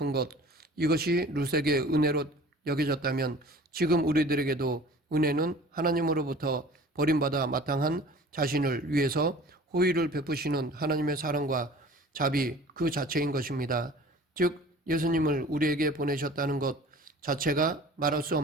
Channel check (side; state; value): both; normal; correlation 0.45